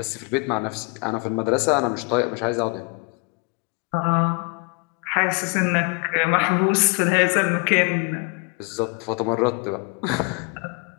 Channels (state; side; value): quieter; right; 30.6 dB